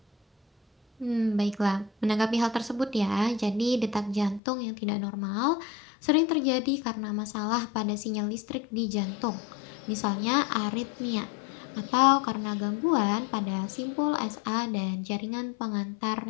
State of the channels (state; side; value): drops out; right; at 4.4 s